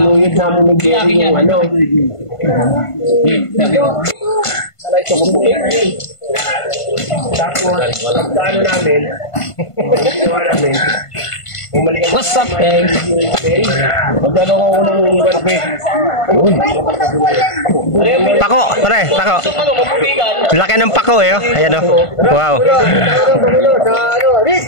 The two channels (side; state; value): right; late; 1.5 ms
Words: namin ni Jerry yung ano. Salay ito kung buhay. Tapos, ano namin, What's up, guys? magkano ko unang kape? Pako, pare, pako. Laki ng pako eh, oh. Ayan oh. Wow.